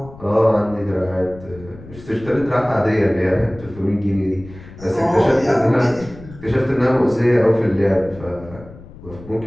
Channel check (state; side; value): noise; left; rumble, 18 dB below the sound